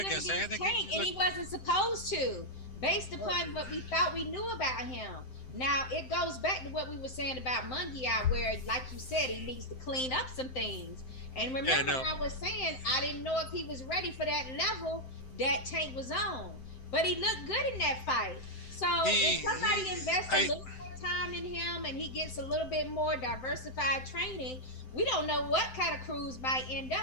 Tank. And he wasn't supposed to, based upon what we thought we knew about him. Now, it goes back to what we were saying about Munguia, where, like you said, he needs to clean up some things. And remember, I was saying I didn't know if he was ready for that level that Tank was on. But he looked good in that fight. So if somebody invests a little more time in him and he gets a little bit more diversified training, we don't know what kind of Cruz might end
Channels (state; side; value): late; right; 7.8 ms